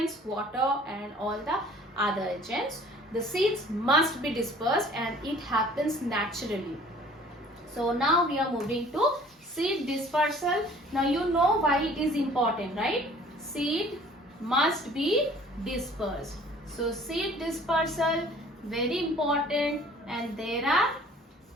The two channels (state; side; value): normal; both; correlation 0.52